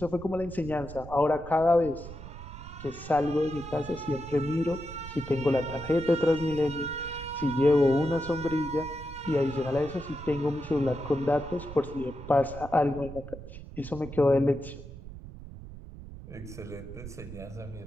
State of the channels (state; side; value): noise; right; rumble, 13 dB below the sound